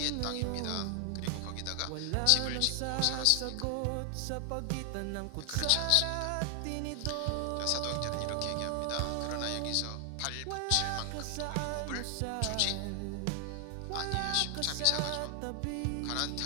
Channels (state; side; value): different; both; correlation 0.00